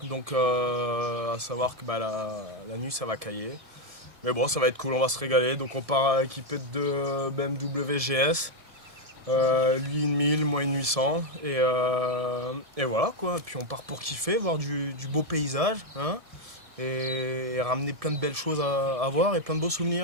Donc à savoir que la nuit ça va cailler. Mais bon, ça va être cool, on va se régaler. Donc on part équipé de deux BMW GS, lui une 1000, moi une 800. Et voilà quoi, puis on part pour kiffer, voir du beau paysage, hein, et ramener plein de belles choses à voir et plein de beaux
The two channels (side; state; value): left; late; 1.7 ms